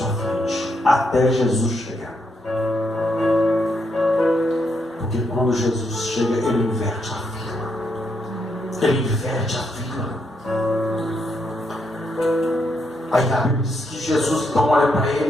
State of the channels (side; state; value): both; normal; correlation 0.78